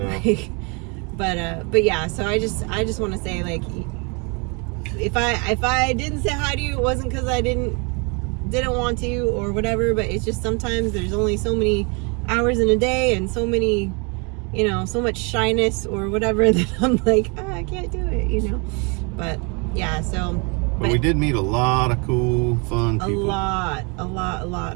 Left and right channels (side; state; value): left; quieter; 32.2 dB